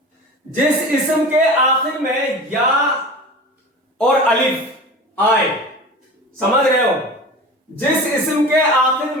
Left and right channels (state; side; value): normal; both; correlation 0.35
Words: जिस इस्म के आखिर में या और अलिफ आए, समझ रहे हो, जिस इस्म के आखिर